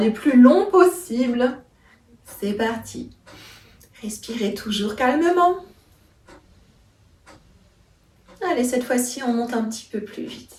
plus longs possibles. C'est parti. Respirez toujours calmement. Allez, cette fois-ci, on monte un petit peu plus vite.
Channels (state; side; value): identical; both; correlation 1.00